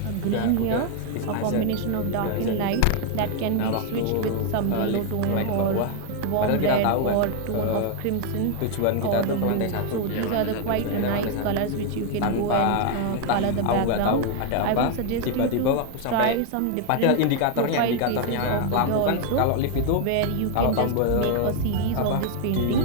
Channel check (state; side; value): different; both; correlation 0.00